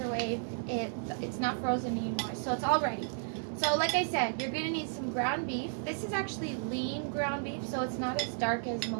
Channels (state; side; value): silent; left; digital silence